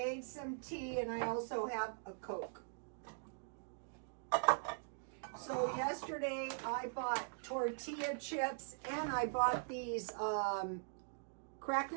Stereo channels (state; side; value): silent; left; digital silence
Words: some tea and I also have a Coke. So yesterday I bought tortilla chips and I bought these